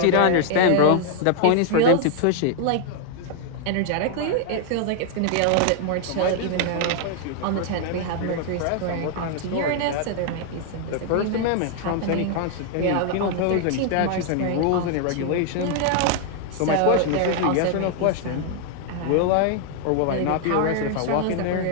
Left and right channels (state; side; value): different; both; correlation 0.00